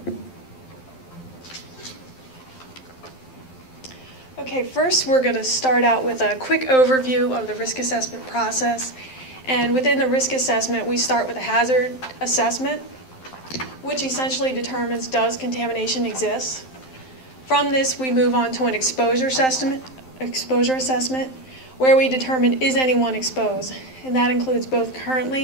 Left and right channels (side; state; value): right; late; 12 ms